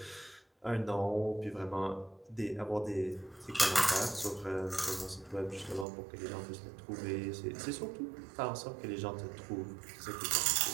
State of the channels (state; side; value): drops out; left; at 5.9 s